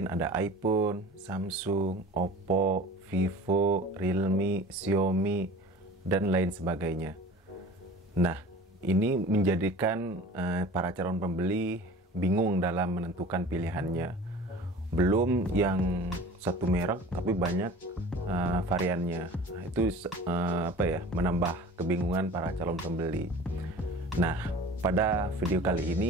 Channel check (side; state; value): both; normal; correlation 0.41